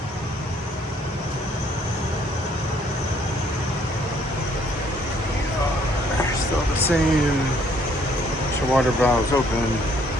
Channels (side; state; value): both; normal; correlation 0.64